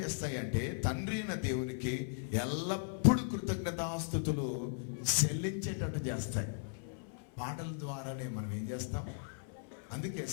చేస్తాయంటే తండ్రి అయిన దేవునికి ఎల్లప్పుడూ కృతజ్ఞతాస్తుతులు చెల్లించేటట్టు చేస్తాయి. పాటల ద్వారానే మనం ఏం చేస్తాం? అందుకే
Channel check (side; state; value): right; silent; 53 dB below the other